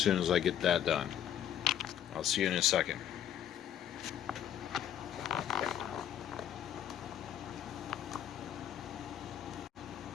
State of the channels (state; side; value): quieter; right; 10.1 dB